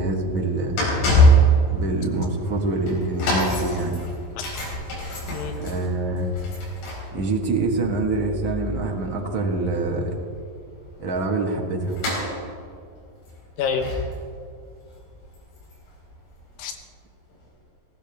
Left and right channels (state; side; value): late; right; 11 ms